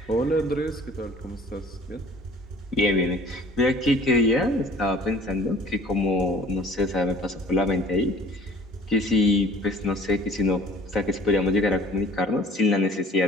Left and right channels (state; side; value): normal; both; correlation 0.50